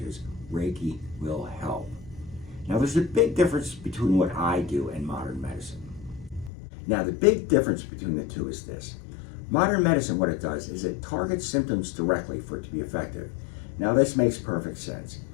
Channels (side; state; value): right; drops out; at 6.5 s